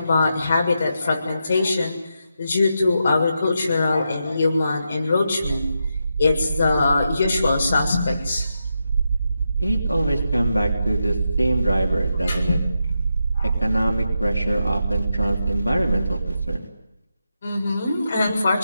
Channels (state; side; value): inverted; both; correlation -0.85